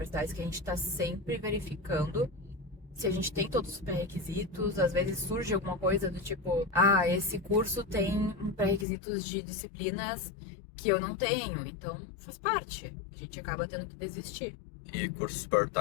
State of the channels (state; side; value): drops out; right; at 8.8 s